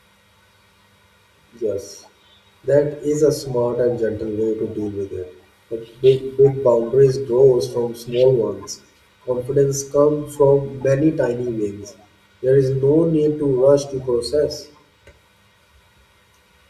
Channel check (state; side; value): identical; both; correlation 1.00